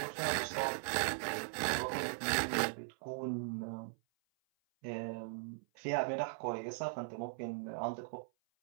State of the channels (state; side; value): silent; left; 52 dB below the other